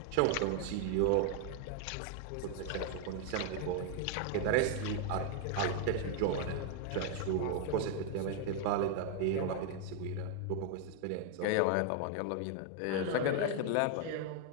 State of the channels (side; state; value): both; different; correlation 0.00